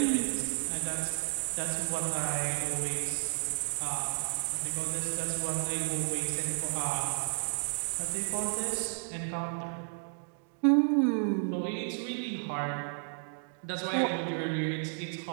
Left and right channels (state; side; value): silent; left; digital silence